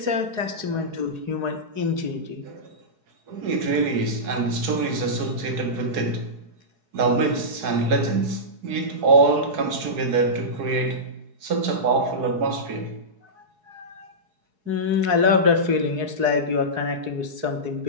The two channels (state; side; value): late; left; 4.7 ms